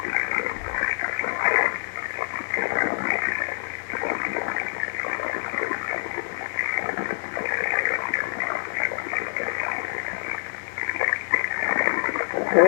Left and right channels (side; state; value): right; silent; 57 dB below the other